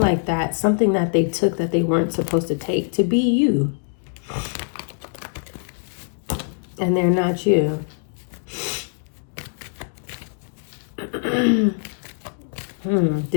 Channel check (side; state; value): right; silent; digital silence